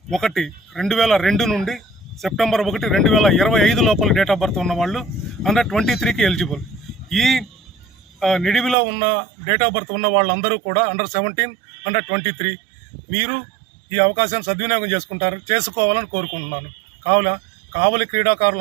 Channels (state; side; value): drops out; left; at 8.8 s